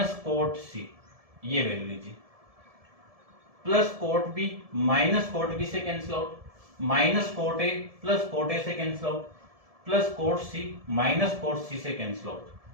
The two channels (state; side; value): late; left; 1.7 ms